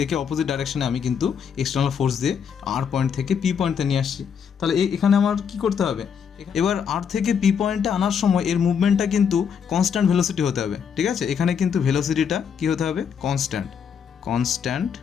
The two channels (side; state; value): right; quieter; 7.2 dB